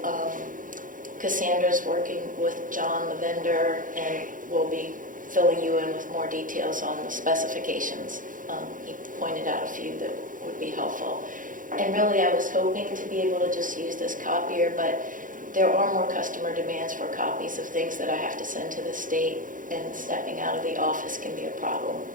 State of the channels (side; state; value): left; late; 0.39 ms